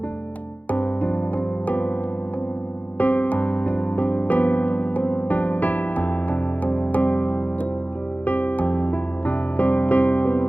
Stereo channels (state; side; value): late; right; 0.076 ms